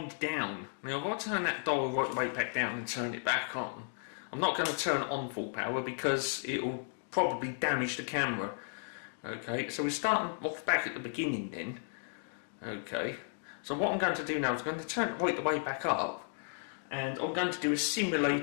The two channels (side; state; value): right; silent; digital silence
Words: down. Now, if I turn that dial right the way back down and turn it back on, I'm not going to turn it on full power because it will probably damage the camera. Okay, so we're starting off back at the beginning then. Okay. So what I'm going to do now is I'm going to turn it right the way back up, and I'm going to do a